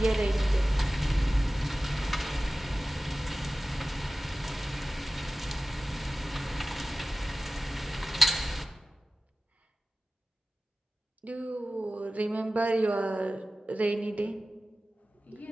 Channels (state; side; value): normal; both; correlation 0.95